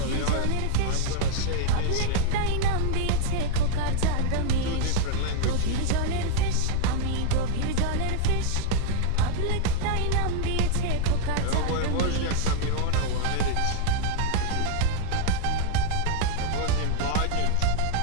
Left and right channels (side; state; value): both; different; correlation -0.01